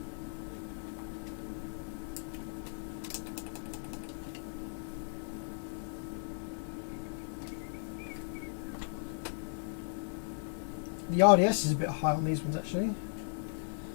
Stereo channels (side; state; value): right; silent; digital silence